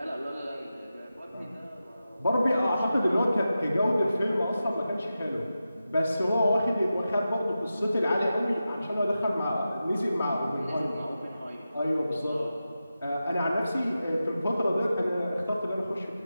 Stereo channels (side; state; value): both; inverted; correlation -0.92